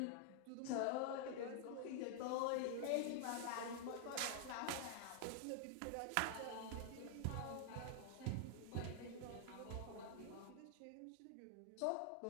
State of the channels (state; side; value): different; both; correlation -0.01